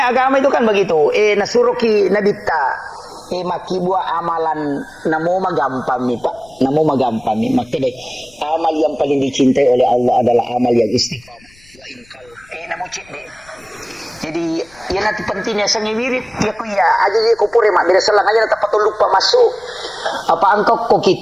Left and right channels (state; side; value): noise; left; rumble, 28 dB below the sound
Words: agama itu kan begitu. Nasuruki nabita. Makibua amalan namo magampami Pak, namo magampami. Makanya amal yang paling dicintai oleh Allah adalah amal yang istiqamah. Wa inkal namo cik deh. Jadi ya nanti pentingnya sangi wirid ya ku ya aja dia ku pure mak beda selang aja dapat lupa masuk. Apa angkau ko